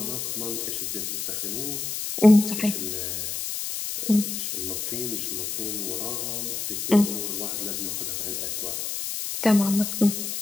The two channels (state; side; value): noise; left; hiss, 3 dB below the sound